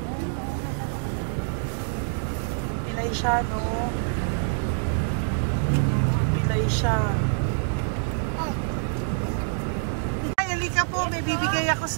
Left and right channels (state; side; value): silent; left; digital silence